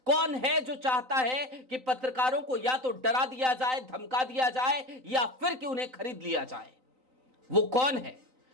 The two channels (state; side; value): late; left; 3.9 ms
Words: कौन है जो चाहता है कि पत्रकारों को या तो डरा दिया जाए, धमका दिया जाए या फिर कि उन्हें खरीद लिया जाए? वो कौन है